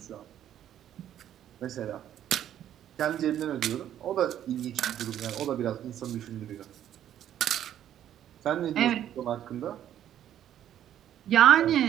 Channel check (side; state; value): left; quieter; 10.9 dB